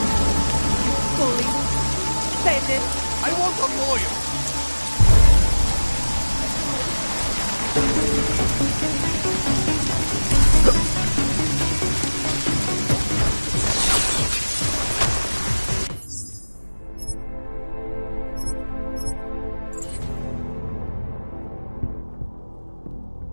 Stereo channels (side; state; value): both; inverted; correlation -1.00